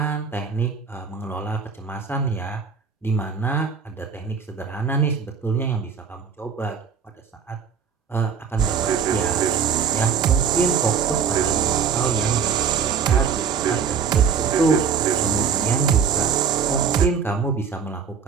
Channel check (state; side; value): quieter; left; 6.6 dB